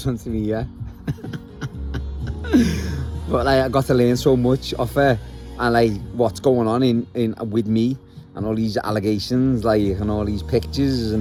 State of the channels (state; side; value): identical; both; correlation 1.00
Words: of me, yeah? But like, I got to learn so much off her, and like, what's going on in with me, and all these allegations, like, and all these pictures,